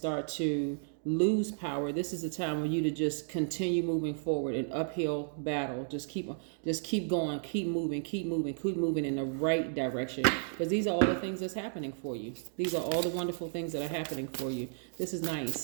to lose power. This is the time for you to just continue moving forward, an uphill battle. Just keep going, keep moving in the right direction. Because these are all the things that's happening for you. These are all the wonderful things that are happening for you. This is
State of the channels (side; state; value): left; silent; digital silence